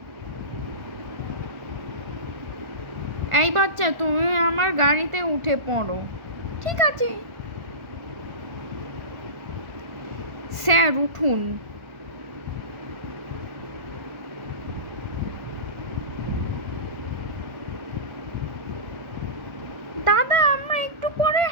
এই বাচ্চা, তুমি আমার গাড়িতে উঠে পড়ো। ঠিক আছে স্যার, উঠুন। দাদা, আমরা একটু পরে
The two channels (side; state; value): left; late; 1.5 ms